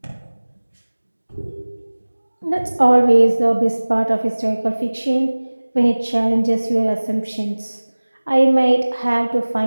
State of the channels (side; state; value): both; inverted; correlation -1.00